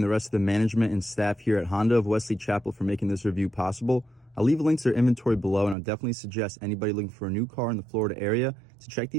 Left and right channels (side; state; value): left; drops out; at 5.8 s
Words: the rest of the management and staff here at Honda of Wesley Chapel for making this review possible. I'll leave links to their inventory below, and I'll definitely suggest anybody looking for a new car in the Florida area to check